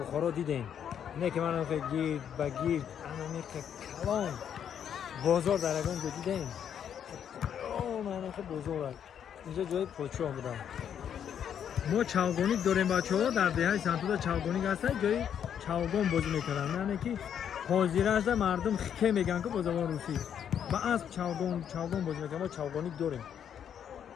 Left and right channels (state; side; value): quieter; right; 8.8 dB